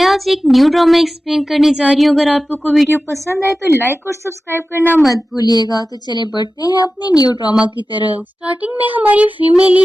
आज एक new drama explain करने जा रही हूँ। अगर आपको कोई वीडियो पसंद आए तो लाइक और सब्सक्राइब करना मत भूलिएगा। तो चले बढ़ते हैं अपने न्यू ड्रामा की तरफ। स्टार्टिंग में हमारी फीमेल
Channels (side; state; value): both; normal; correlation 0.95